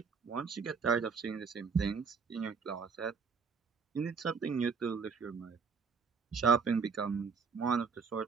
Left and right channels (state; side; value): quieter; left; 5.5 dB